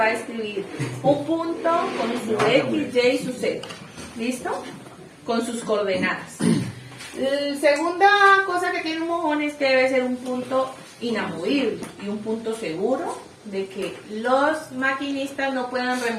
a escribir un punto con su X, Y y su Z. ¿Listo? Con sus coordenadas. La segunda cosa que tiene un mojón es que debe ser un punto inamovible y un punto seguro de que los maquinistas no puedan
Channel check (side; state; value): both; identical; correlation 1.00